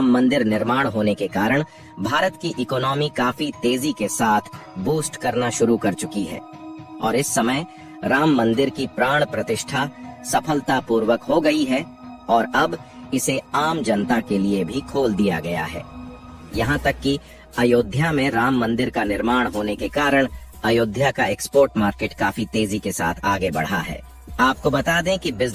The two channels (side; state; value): both; identical; correlation 1.00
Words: मंदिर निर्माण होने के कारण भारत की इकोनॉमी काफी तेजी के साथ बूस्ट करना शुरू कर चुकी है और इस समय राम मंदिर की प्राण प्रतिष्ठा सफलतापूर्वक हो गई है और अब इसे आम जनता के लिए भी खोल दिया गया है। यहाँ तक कि अयोध्या में राम मंदिर का निर्माण होने के कारण अयोध्या का एक्सपोर्ट मार्केट काफी तेजी के साथ आगे बढ़ा है। आपको बता दें कि